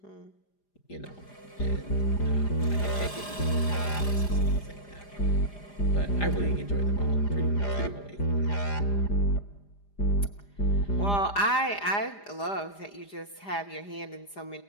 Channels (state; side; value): late; right; 4.9 ms